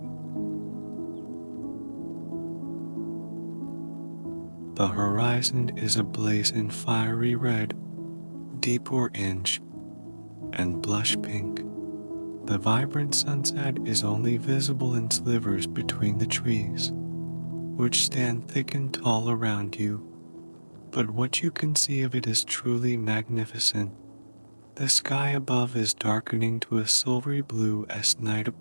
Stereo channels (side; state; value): both; inverted; correlation -1.00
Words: The horizon is ablaze in fiery red, deep orange, and blush pink. The vibrant sunset is only visible in slivers between the trees, which stand thick and tall around you, but what you can see of it is truly magnificent. The sky above is darkening to a silvery blue as night